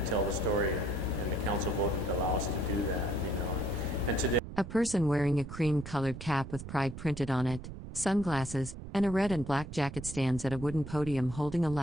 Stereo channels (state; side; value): noise; right; rumble, 11 dB below the sound